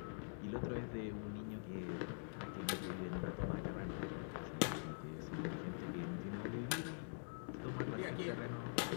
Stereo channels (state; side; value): silent; right; digital silence